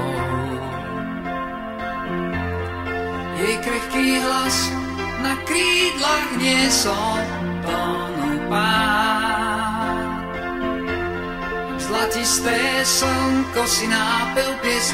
Jej krehký hlas na krídlach niesol tónu pád. Zlatisté slnko si nápel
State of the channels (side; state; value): both; identical; correlation 1.00